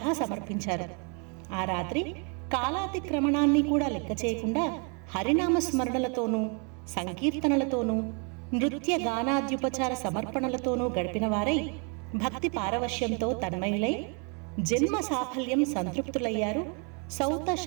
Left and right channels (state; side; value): quieter; left; 36.6 dB